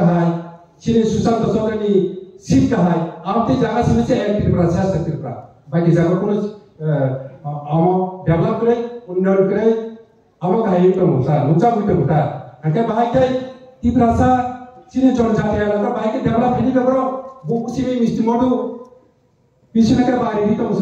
চিনি Sushant Chowdhury seat কাহাই আমতে জায়গা সিনেছে এক ত্রিপুরা শেষ ত্রিপুরা বাকি জায়গা কোন আম ডেভেলপ করে উন্নয়ন করে আম কাহাই তো মুসা মুচা বুইতে মুতা আকে বাহাইতে ত্রিপুরা সা চিনি জনজাতি এলাকা বাহাইকে ডেভেলপ হেনি বেবর বুকুসিমি মিষ্টি মধু পিছনেকে বাড়ি তো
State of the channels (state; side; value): identical; both; correlation 1.00